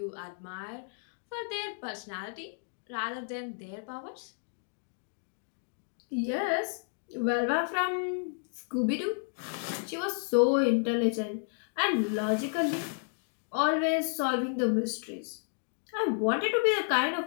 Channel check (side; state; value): right; silent; 57 dB below the other